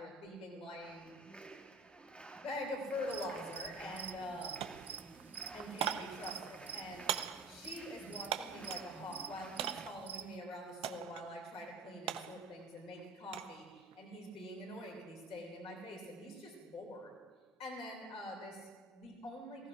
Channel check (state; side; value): quieter; left; 3.1 dB